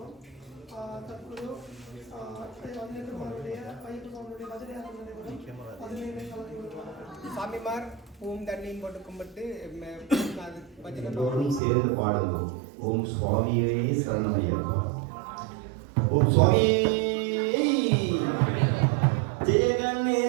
தற்போது 18 மாதனுடைய ஐயப்பனுடைய பஜனையாக நடைபெறும். பதினைந்து கலந்து கொள்வார்கள். சாமிமார் ஓம் தண்ணியும் போட்டு கும்பிட்டு பஜனை எல்லோரும் சேர்ந்து பாடுங்கள். ஓம் சுவாமியே சரணமையப்பா. ஓம் சுவாமியே ஜெய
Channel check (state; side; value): drops out; left; at 11.6 s